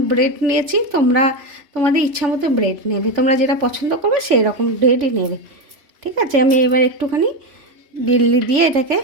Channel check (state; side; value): late; left; 3.5 ms